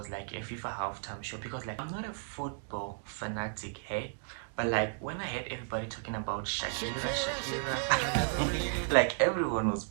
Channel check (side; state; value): left; silent; digital silence